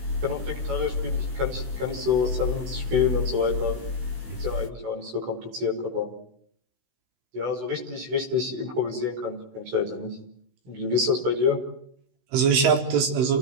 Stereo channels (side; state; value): left; late; 16 ms